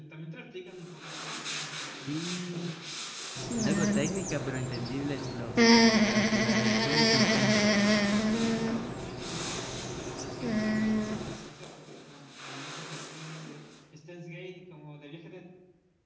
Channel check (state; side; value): identical; both; correlation 1.00